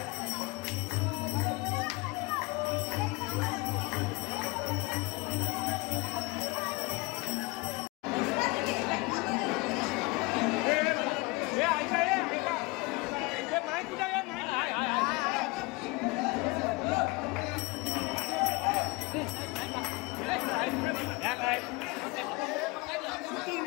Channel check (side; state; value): right; quieter; 25.7 dB